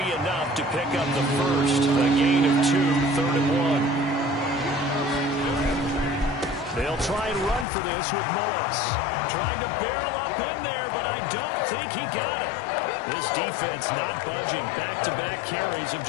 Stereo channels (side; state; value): right; drops out; at 7.7 s